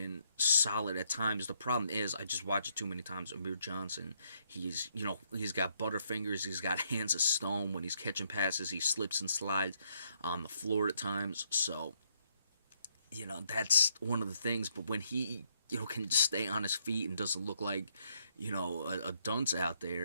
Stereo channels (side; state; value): both; inverted; correlation -0.72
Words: solid at times. The problem is, I just watch it too many times. Amir Johnson, he's got butterfingers. He's got hands of stone. When he's catching passes, he slips and slides on the floor at times. So, that's one of the things. But when he can just stay on his feet and doesn't look like, a dunce out